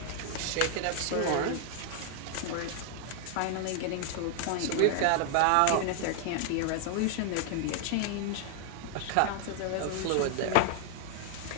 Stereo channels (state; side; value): different; both; correlation 0.00